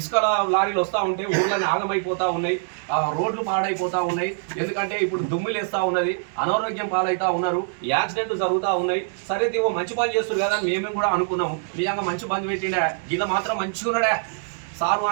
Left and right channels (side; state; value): left; silent; digital silence